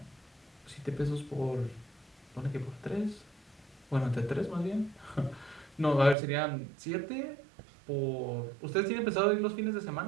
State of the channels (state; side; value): drops out; left; at 6.2 s